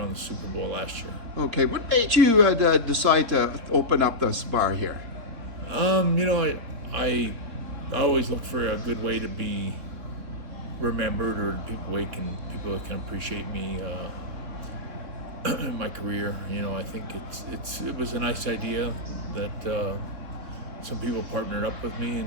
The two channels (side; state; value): left; late; 3.6 ms